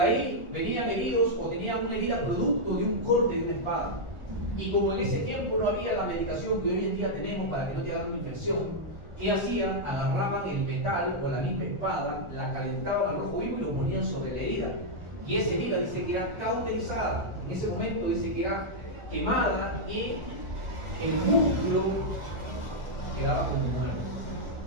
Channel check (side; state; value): left; late; 1.4 ms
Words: venían heridos o tenían una herida producto de un corte de una espada. Y como en ese tiempo no había la medicación que hoy en día tenemos para que no te hagan una infección, ¿Qué hacían? Agarraban el metal o la misma espada, la calentaban al rojo vivo y lo ponían sobre la herida. Y esa herida dice que era cauterizada. En ese momento dice que era quemada y el músculo quedaba como muerto.